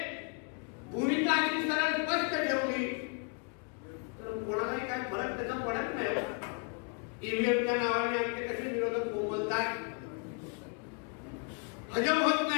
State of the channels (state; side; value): quieter; right; 38.1 dB